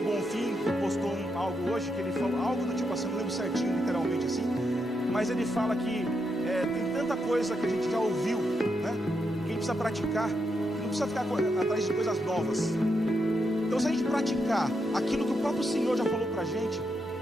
que postou algo hoje, que ele falou algo do tipo assim, não lembro certinho, literalmente assim, mas ele fala que tem tanta coisa que a gente já ouviu, né? Que a gente precisa praticar, que não precisa ficar atrás de coisas novas. Então se a gente praticar aquilo que o próprio Senhor já falou pra gente,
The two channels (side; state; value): both; normal; correlation 0.82